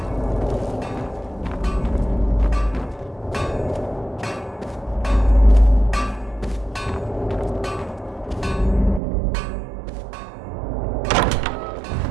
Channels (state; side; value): drops out; left; at 9.0 s